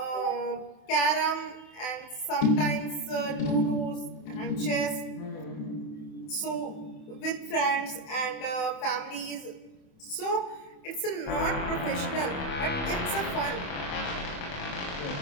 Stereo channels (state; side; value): late; right; 28 ms